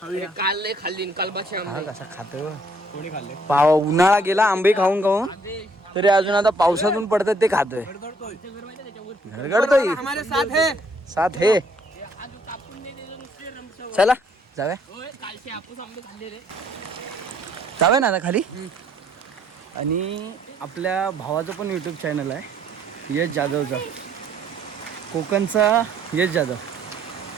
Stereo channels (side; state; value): both; normal; correlation 0.65